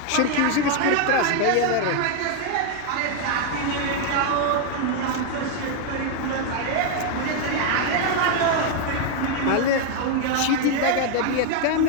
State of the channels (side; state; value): both; different; correlation 0.00